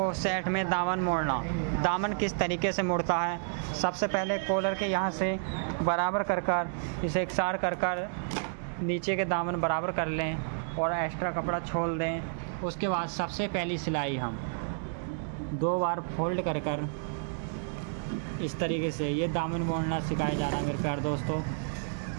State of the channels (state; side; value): silent; left; digital silence